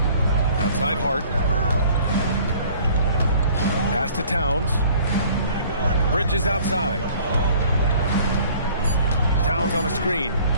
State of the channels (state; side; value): inverted; both; correlation -0.53